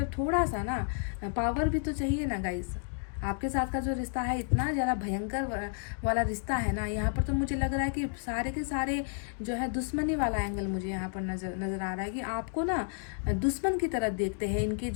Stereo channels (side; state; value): right; silent; 57 dB below the other